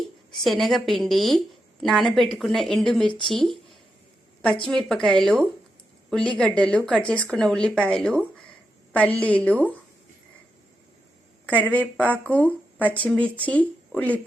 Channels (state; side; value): normal; both; correlation 0.85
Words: శనగపిండి, నానబెట్టుకున్న ఎండుమిర్చి, పచ్చిమిరపకాయలు, ఉల్లిగడ్డలు, కట్ చేసుకున్న ఉల్లిపాయలు, పల్లీలు, కరివేపాకు, పచ్చిమిర్చి,